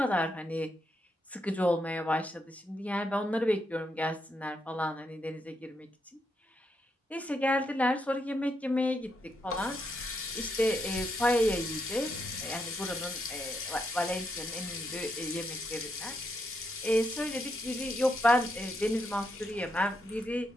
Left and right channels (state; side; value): normal; both; correlation 0.80